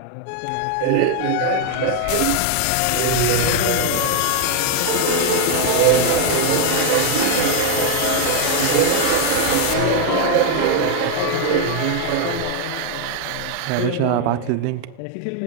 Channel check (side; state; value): both; different; correlation 0.01